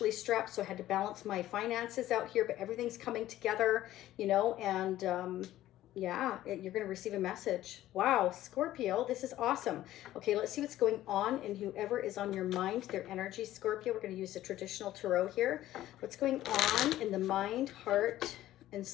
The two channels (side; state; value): right; quieter; 14.2 dB